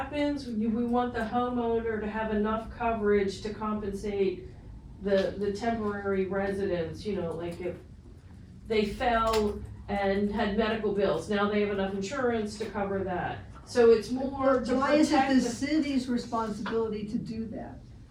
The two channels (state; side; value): identical; both; correlation 1.00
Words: we want the homeowner to have enough coverage to compensate the temporary residents, like if they fell and had medical bills, now they have enough insurance to cover that. So it's more to Why is it protect the city's responsibility to do that?